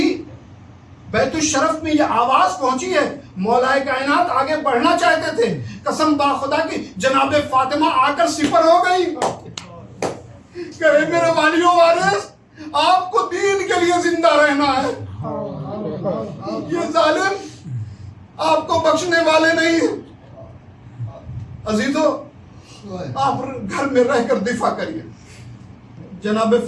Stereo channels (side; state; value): both; identical; correlation 1.00